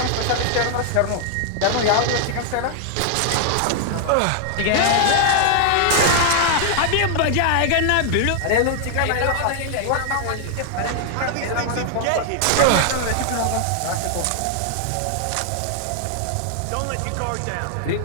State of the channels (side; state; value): both; different; correlation 0.00